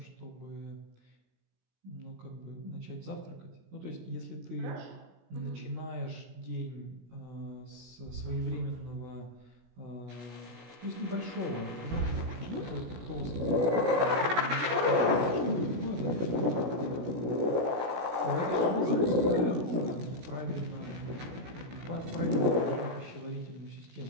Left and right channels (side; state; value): left; late; 17 ms